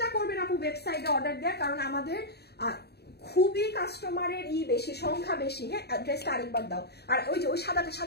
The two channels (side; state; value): right; late; 0.47 ms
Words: করবেন আপু ওয়েবসাইটে অর্ডার দেওয়ার, কারণ আমাদের খুবই কাস্টমারের বেশি, সংখ্যা বেশি। হ্যাঁ ড্রেসটা আরেকবার দাও, আর ওই যে ওই সাদাটা